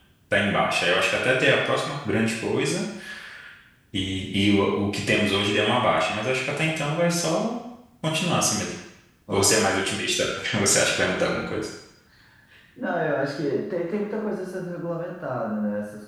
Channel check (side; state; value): both; identical; correlation 1.00